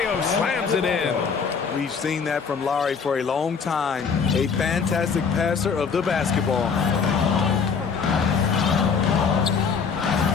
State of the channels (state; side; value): quieter; right; 5.8 dB